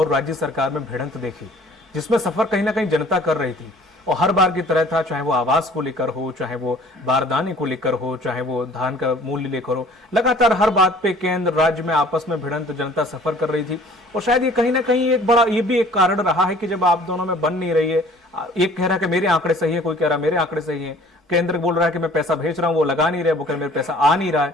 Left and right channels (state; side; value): normal; both; correlation 0.52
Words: राज्य सरकार में भिड़ंत देखी, जिसमें सफर कहीं ना कहीं जनता कर रही थी और हर बार की तरह था, चाहे वो आवास को लेकर हो, चाहे वो बारदाने को लेकर हो, चाहे वो धान का मूल्य लेकर हो, लगातार हर बात पे केंद्र राज्य में आपस में भिड़ंत जनता सफर कर रही थी। और शायद ये कहीं ना कहीं एक बड़ा ये भी एक कारण रहा है कि जब आप दोनों में बन नहीं रही है, एक कह रहा है कि मेरे आंकड़े सही है, कोई कह रहा है मेरे आंकड़े सही है, केंद्र बोल रहा है कि मैं पैसा भेज रहा हूं, वो लगा नहीं रहे, वो कह रहे मेरे पैसा आ नहीं रहा है,